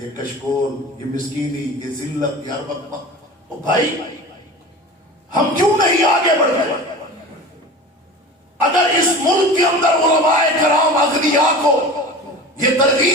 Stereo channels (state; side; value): normal; both; correlation 0.35